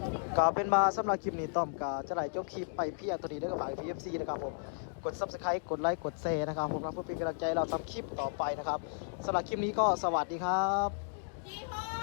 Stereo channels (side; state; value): right; silent; digital silence